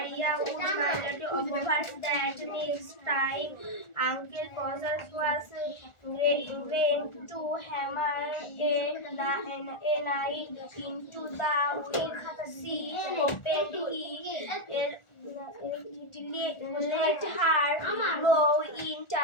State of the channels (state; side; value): late; right; 1.4 ms